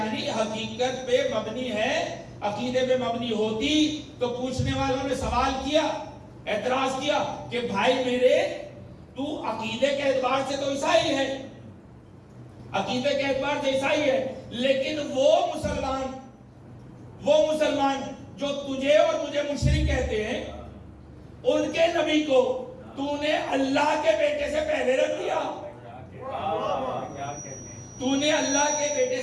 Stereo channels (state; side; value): identical; both; correlation 1.00